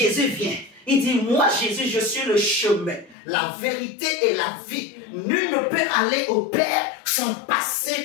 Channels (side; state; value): right; drops out; at 3.2 s